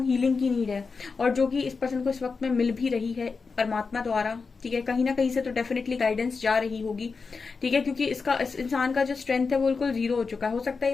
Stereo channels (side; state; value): right; quieter; 4.7 dB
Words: हीलिंग की नीड है, और जो कि इस पर्सन को इस वक्त में मिल भी रही है परमात्मा द्वारा, ठीक है। कहीं ना कहीं से तो डेफिनेटली गाइडेंस जा रही होगी, ठीक है, क्योंकि इस इंसान का जो स्ट्रेंथ है वो बिल्कुल जीरो हो चुका है। हो सकता है